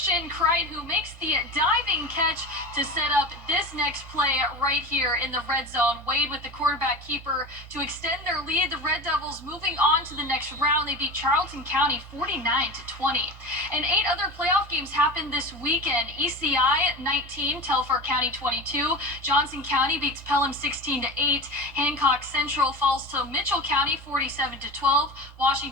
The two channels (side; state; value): both; normal; correlation 0.29